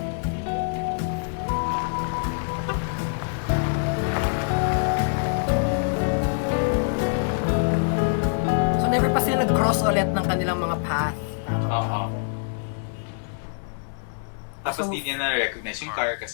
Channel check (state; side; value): silent; right; 62 dB below the other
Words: So, never pa sila nag-cross ulit ng kanilang mga path. Tama ba? Oo. Tapos So, di niya na-recognize yung car